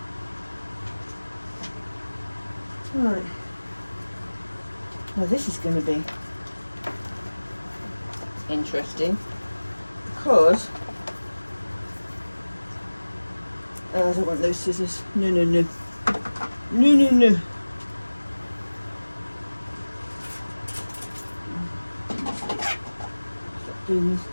Right. Now this is going to be interesting because I don't want those scissors. No, no, no. No, no, no. Stop doing this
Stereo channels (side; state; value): both; inverted; correlation -1.00